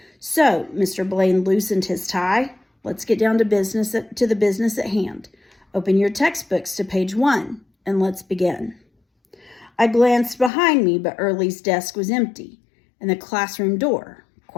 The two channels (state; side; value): drops out; right; at 10.5 s